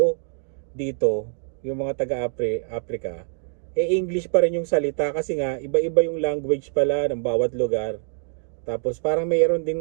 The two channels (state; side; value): silent; left; digital silence